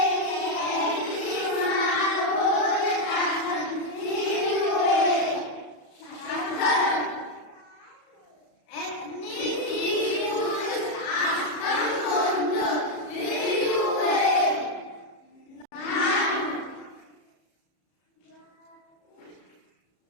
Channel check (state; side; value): late; right; 33 ms